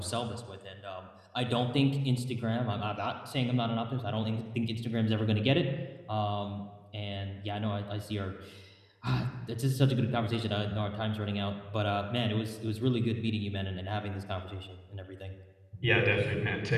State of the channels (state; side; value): identical; both; correlation 1.00